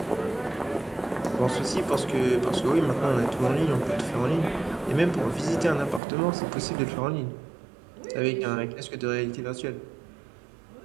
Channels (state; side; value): drops out; left; at 6.0 s